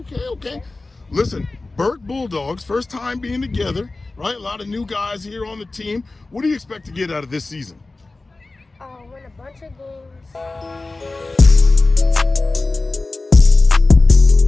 Listen, Burke Bulldogs, first time being together, right? A lot of new guys here on the team. What do you expect to get out of this season? Win a bunch of games.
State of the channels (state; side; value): quieter; right; 3.3 dB